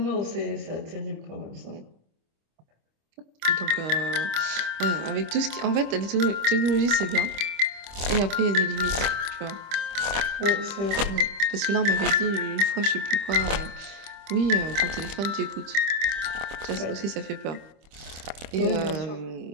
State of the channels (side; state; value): left; late; 25 ms